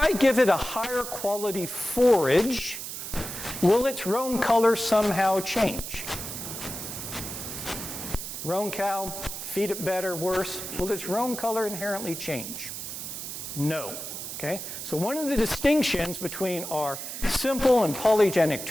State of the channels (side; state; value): right; noise; hiss, 7 dB below the sound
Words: give it a higher quality forage, will its roan color somehow change? Roan cow, feed it better, worse. Will its roan color inherently change? No. Okay? So one of the distinctions between our simple and polygenic